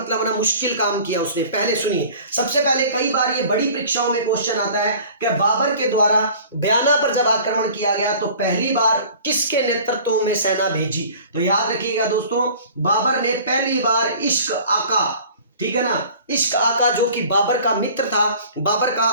ना मुश्किल काम किया उसने। पहले सुनिए, सबसे पहले कई बार ये बड़ी परीक्षाओं में क्वेश्चन आता है कि बाबर के द्वारा बयाना पर जब आक्रमण किया गया तो पहली बार किसके नेतृत्व में सेना भेजी। तो याद रखिएगा दोस्तों, बाबर ने पहली बार इश्क आका, ठीक है ना, इश्क आका जो कि बाबर का मित्र था, बाबर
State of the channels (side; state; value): both; inverted; correlation -0.45